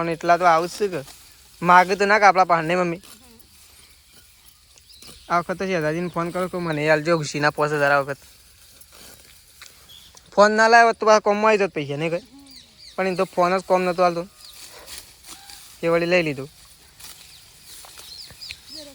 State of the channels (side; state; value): both; identical; correlation 1.00